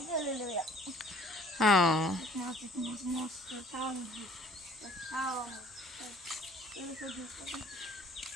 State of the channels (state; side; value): normal; both; correlation 0.54